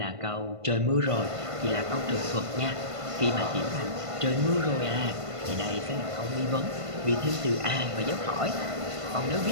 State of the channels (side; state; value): left; late; 1.5 ms